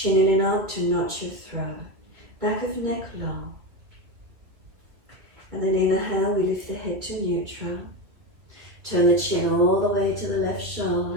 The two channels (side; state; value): left; late; 2.5 ms